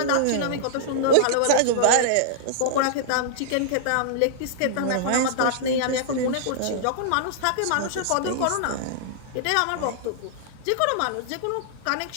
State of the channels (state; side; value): different; both; correlation -0.01